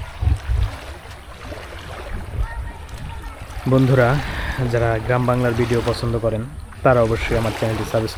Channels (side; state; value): both; identical; correlation 1.00